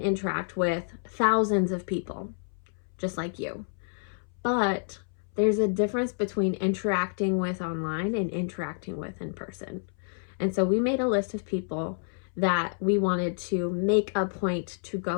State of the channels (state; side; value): silent; right; 59 dB below the other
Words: with thousands of people, just like you. But there's a difference between interacting with online and interacting with in person. And so we made a list of people that we wanted to make a point to